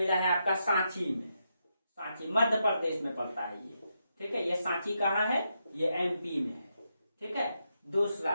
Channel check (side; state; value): both; inverted; correlation -0.83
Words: है आपका सांची में, सांची मध्य प्रदेश में पड़ता है ये। ठीक है। ये सांची कहाँ है, ये MP में है। ठीक है। दूसरा